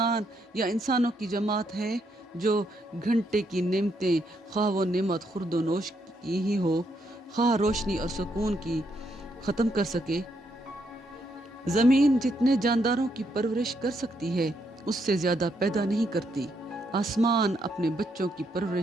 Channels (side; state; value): both; normal; correlation 0.76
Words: یا انسانوں کی جماعت ہے جو گھنٹے کی نعمتیں خواہ وہ نعمت خورد و نوش کی ہی ہو، خواہ روشنی اور سکون کی ختم کر سکے؟ زمین جتنے جانداروں کی پرورش کر سکتی ہے اس سے زیادہ پیدا نہیں کرتی۔ آسمان اپنے بچوں کی